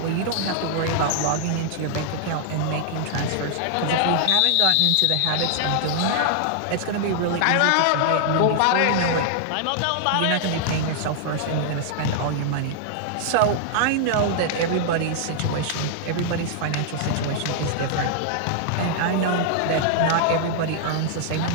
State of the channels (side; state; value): both; different; correlation -0.01